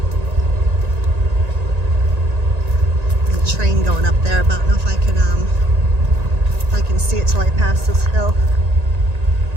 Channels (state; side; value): late; left; 1.9 ms